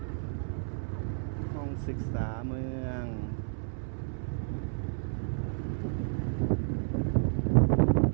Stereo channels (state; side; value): silent; left; 57 dB below the other